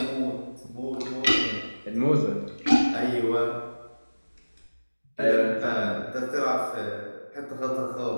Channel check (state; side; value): inverted; both; correlation -1.00